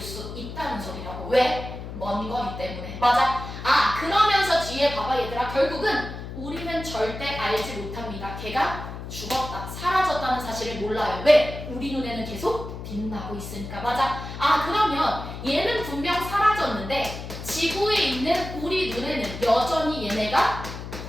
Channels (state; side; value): noise; left; hum, 9 dB below the sound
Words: 있다는 소리라고. 왜? 먼 거리 때문에. 맞아? 그러면서 뒤에 봐봐 얘들아. 결국은 우리는 절대 알지 못합니다. 걔가 죽었다, 사라졌다는 사실을 몰라요. 왜? 우리 눈에는 계속 빛나고 있으니까. 맞아? 그러면 얘는 분명 사라졌는데 지구에 있는 우리 눈에는 여전히 얘네가